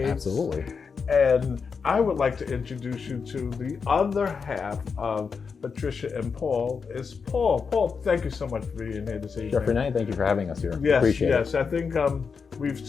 Absolutely. And I would like to introduce you to the other half of Patricia and Paul. Is Paul. Paul, thank you so much for being here this evening. Chef Rene, thank you for having us here. Yes, Appreciate yes. it. I think we've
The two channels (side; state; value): right; quieter; 5.6 dB